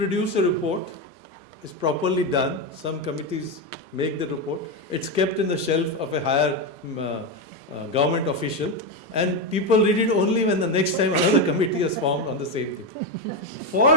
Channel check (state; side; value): normal; both; correlation 0.11